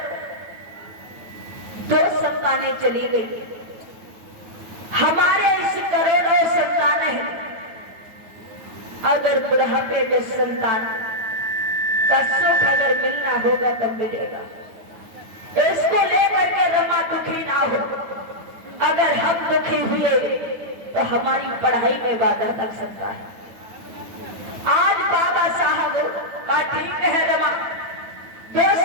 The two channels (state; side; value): late; left; 9.1 ms